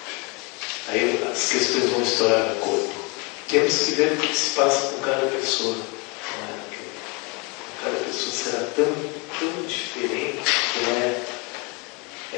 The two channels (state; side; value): quieter; right; 30.1 dB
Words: Aí as questões vão estourar no corpo. Temos que ver o que se passa com cada pessoa. Cada pessoa será tão diferente que